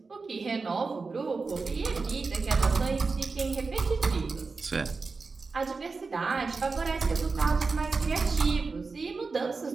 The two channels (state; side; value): quieter; left; 4.3 dB